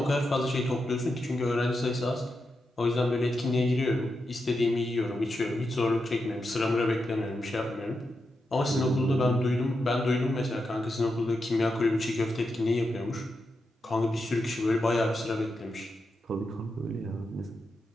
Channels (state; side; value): normal; both; correlation 0.87